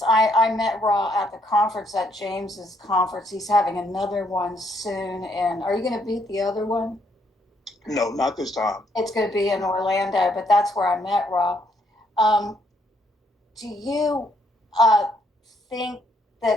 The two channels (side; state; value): both; normal; correlation 0.71